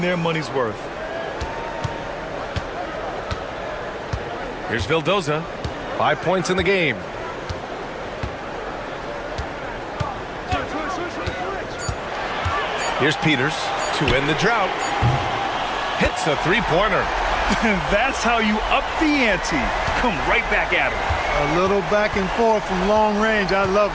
their money's worth. Here's Vildoza. 5 points in the game. Here's Peters to end the drought. Hits a three-pointer. That's how you up the ante. Come right back at him. A little back and forth from long range. I love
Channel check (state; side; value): identical; both; correlation 1.00